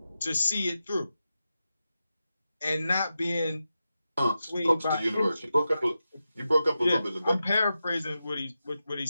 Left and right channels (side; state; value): both; inverted; correlation -0.91